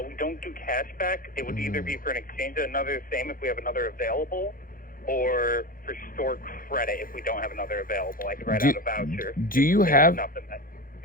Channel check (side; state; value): right; late; 0.41 ms